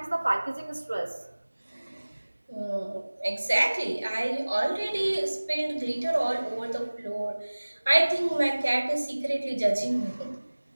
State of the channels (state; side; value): inverted; both; correlation -1.00